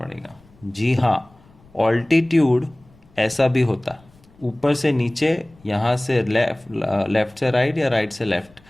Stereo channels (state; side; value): noise; left; rumble, 28 dB below the sound